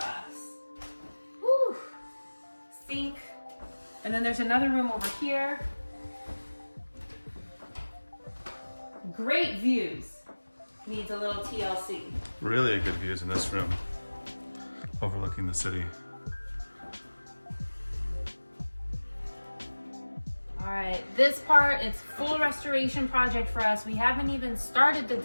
Whew. Sink. And then there's another room over here. Great views. Needs a little TLC. Really good views in this room, overlooking the city. All right, this part, it's full restoration project for us. We haven't even started the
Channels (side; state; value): both; inverted; correlation -1.00